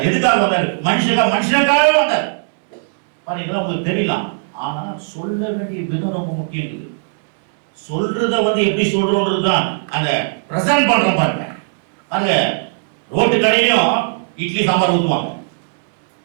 எதுக்காக வந்தார்? மனுஷனுக்காக வந்தார். பாருங்க, உங்களுக்கு தெரியலாம். ஆனா சொல்ல வேண்டிய விதம் ரொம்ப முக்கியம் இருக்குது. சொல்றத எப்படி சொல்றோன்றது தான் அந்த பிரசன்ட் பண்றோம். பாருங்க பாருங்க, ரோட்டு கடையிலும் இட்லி சாம்பார் ஊற்றுவாங்க.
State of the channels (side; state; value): left; silent; digital silence